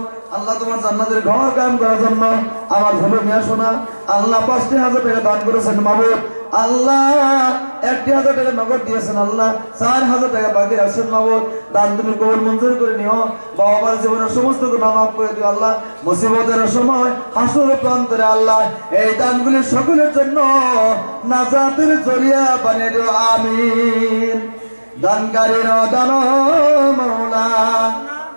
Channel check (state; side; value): inverted; both; correlation -1.00